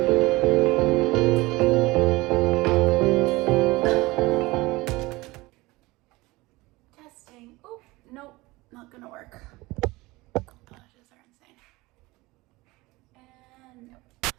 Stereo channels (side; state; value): left; quieter; 21.4 dB